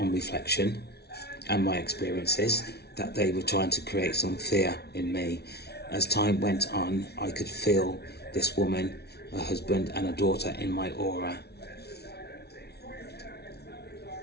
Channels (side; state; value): right; late; 0.48 ms